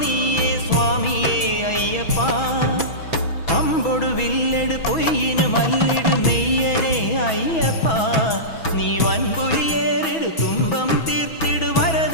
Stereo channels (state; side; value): late; right; 6.1 ms